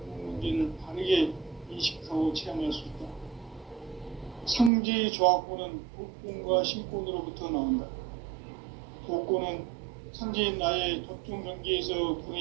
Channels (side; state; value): left; drops out; at 4.7 s